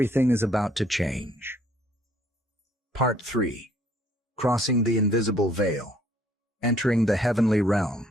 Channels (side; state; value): both; normal; correlation 0.62